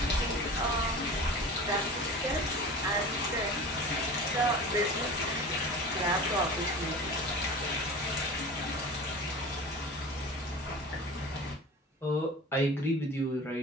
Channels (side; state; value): both; normal; correlation 0.36